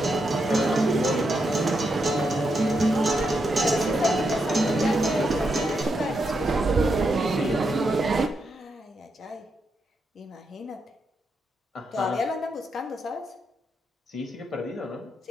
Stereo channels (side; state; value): both; normal; correlation 0.83